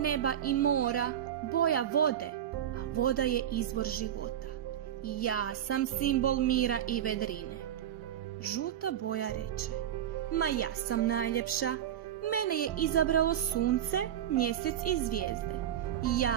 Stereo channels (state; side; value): quieter; left; 10.4 dB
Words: i mora, boja vode, a voda je izvor života. Ja sam simbol mira i vedrine. Žuta boja reče: ma ja sam najljepša. Mene je izabralo sunce, mjesec i zvijezde.